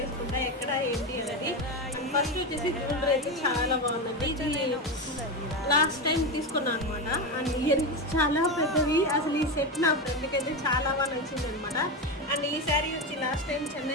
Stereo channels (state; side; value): normal; both; correlation 0.15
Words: ఎక్కడ ఏంటి అనేది. ఫస్ట్ వచ్చేసి జ్యువెలరీ అయితే చాలా బాగుంది. ఇది లాస్ట్ టైం తీసుకున్నాను అనమాట. అండ్ ఇయరింగ్స్ చాలా పెద్దవి. అసలు ఈ సెట్ నా ఫ్రెండ్కి అయితే చాలా బాగా నచ్చింది అనమాట. అండ్ ఈ శారీ వచ్చి లాస్ట్ టైం